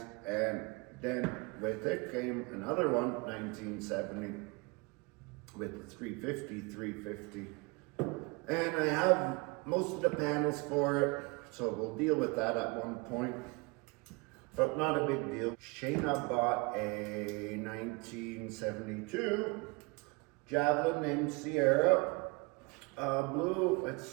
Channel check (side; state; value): left; quieter; 28.2 dB